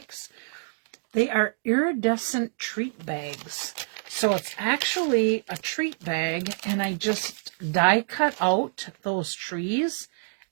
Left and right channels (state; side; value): silent; left; digital silence